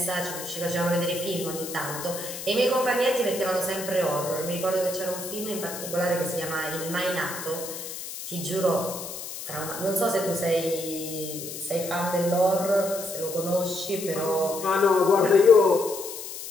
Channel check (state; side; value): noise; left; hiss, 9 dB below the sound